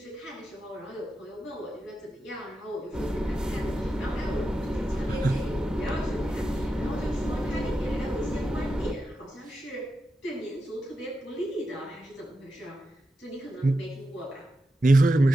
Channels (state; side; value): normal; both; correlation 0.89